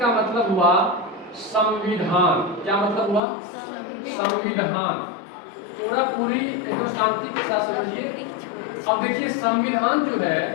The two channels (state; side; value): drops out; right; at 3.2 s